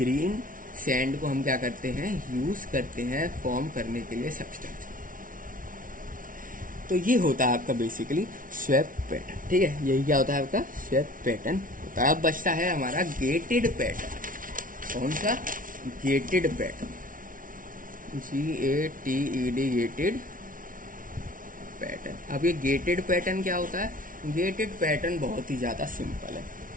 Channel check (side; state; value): left; late; 0.39 ms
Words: सैंड को हम क्या करते हैं, यूज करते हैं फॉर्म करने के लिए सब्सटेंस। तो ये होता है आपका बेसिकली स्वेप पैटर्न, ठीक है। यही क्या होता है आपका स्वेप पैटर्न होता है। अब बचता है हमारा गेटेड पैटर्न। कौन सा, gated pattern, GATED, gated pattern. अब ये गेटेड पैटर्न क्या होता है, गेटेड पैटर्न बहुत ही ज्यादा सिंपल है।